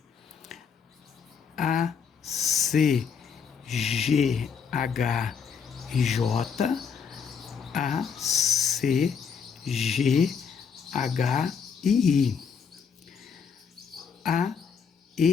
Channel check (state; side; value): quieter; right; 6.4 dB